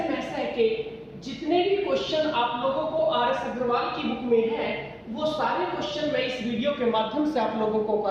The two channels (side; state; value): both; identical; correlation 1.00